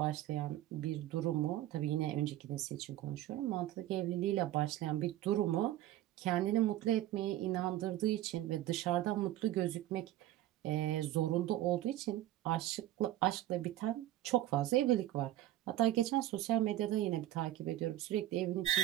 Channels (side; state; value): left; quieter; 14.0 dB